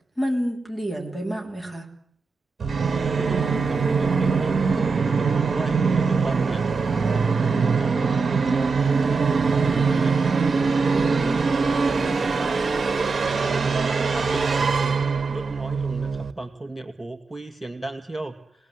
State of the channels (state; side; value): quieter; left; 4.3 dB